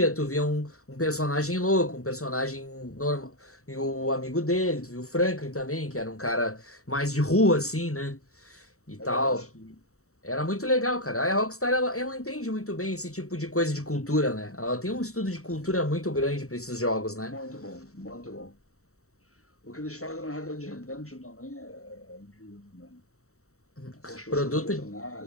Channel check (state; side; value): late; right; 0.64 ms